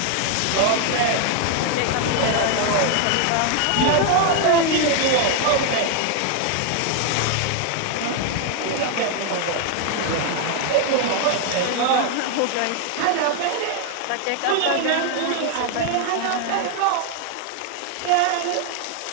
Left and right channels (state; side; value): different; both; correlation 0.00